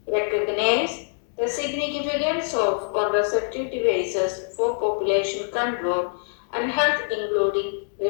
Recognize the significance of contraceptive devices for population control and health, including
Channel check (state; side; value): silent; right; 62 dB below the other